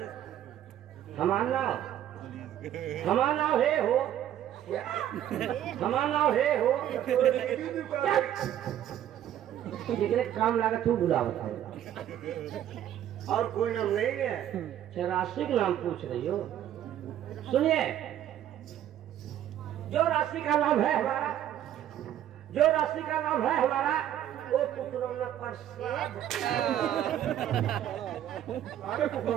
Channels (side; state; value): left; quieter; 11.3 dB